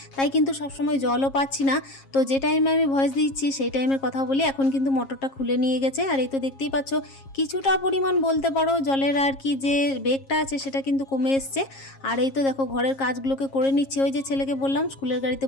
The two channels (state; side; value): late; right; 7.4 ms